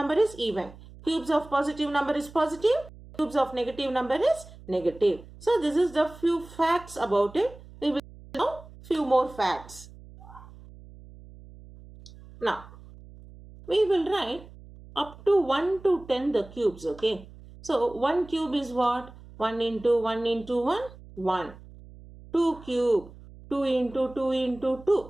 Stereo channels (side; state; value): right; noise; hum, 19 dB below the sound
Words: is even. Cubes of positive number is positive. Cubes of negative number is negative. So, this is the few facts about it. We will know few more facts. Now, we will write up to 1 to 10 the cubes, okay. So, 1 cube is what? 1 into 1 into 1, 1. 2 cube, 2 into 2 into